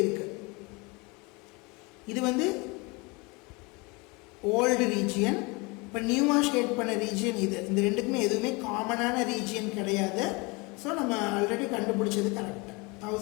இருக்குது, இது வந்து ஓல்டு ரீஜியன், இப்போ நியூவாக ஷேட் பண்ண ரீஜியன் இது. இந்த ரெண்டுக்குமே எதுவுமே காமனான ரீஜியன் கிடையாது. ஸோ நம்ம ஆல்ரெடி கண்டுபிடிச்சது கரெக்டாக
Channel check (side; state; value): right; quieter; 27.1 dB